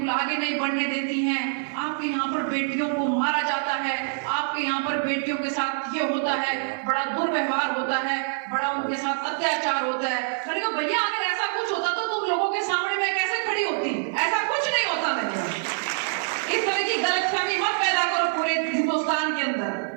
आगे नहीं बढ़ने देती हैं, आपके यहाँ पर बेटियों को मारा जाता है, आपके यहाँ पर बेटियों के साथ ये होता है, बड़ा दुर्व्यवहार होता है, बड़ा उनके साथ अत्याचार होता है। मैंने कहा भैया अगर ऐसा कुछ होता तो तुम लोगों के सामने मैं कैसे खड़ी होती? ऐसा कुछ नहीं होता। मैंने इस तरह की गलतफहमी मत पैदा करो पूरे हिंदुस्तान के अंदर।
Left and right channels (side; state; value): left; silent; digital silence